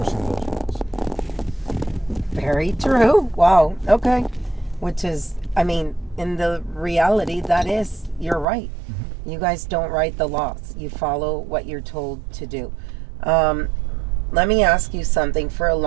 those laws. Very true. Wow. Okay. Which is, I mean, in the reality, that is, you're right. Mm-hmm. You guys don't write the laws. You follow what you're told to do. Let me ask you something. For a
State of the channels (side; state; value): left; drops out; at 8.5 s